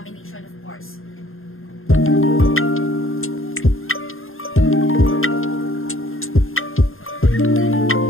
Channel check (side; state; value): right; late; 0.60 ms